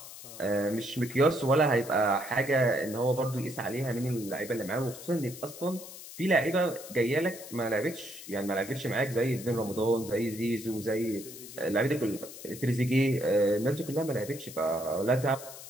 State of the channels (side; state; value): left; noise; hiss, 14 dB below the sound